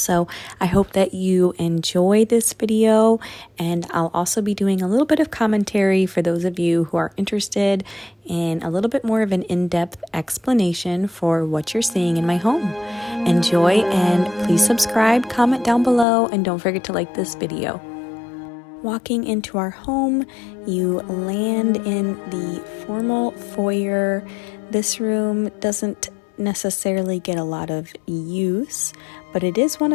I hope that you enjoy this video, and I'll also be doing a little bit of commentary for those of you who are interested in a little bit more of an in-depth explanation for what you're seeing in my home. Enjoy, and please subscribe, comment down below, and don't forget to like this video. Walking into our home, you land in the formal foyer. This room doesn't necessarily get a lot of use, but it is one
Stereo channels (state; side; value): drops out; right; at 16.1 s